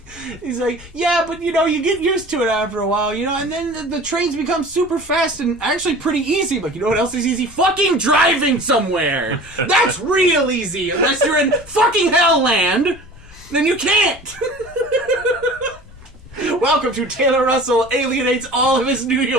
He's like, yeah, but, you get used to it after a while, and then the trains become super fast and actually pretty easy. But you know what else is easy? Fucking driving somewhere! That's real easy! Unless you're in fucking Hellland, then you can't! Welcome to Taylor Russell alienates all of his New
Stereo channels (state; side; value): noise; left; rumble, 21 dB below the sound